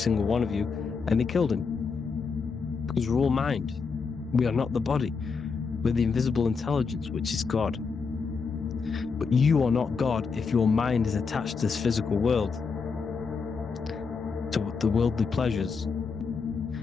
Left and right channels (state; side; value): quieter; right; 5.2 dB